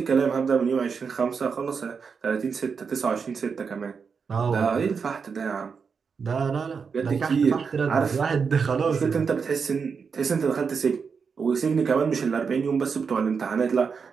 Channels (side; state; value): left; quieter; 5.7 dB